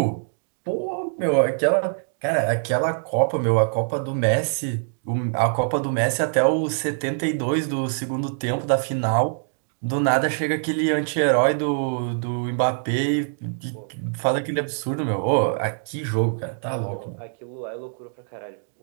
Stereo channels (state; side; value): silent; left; digital silence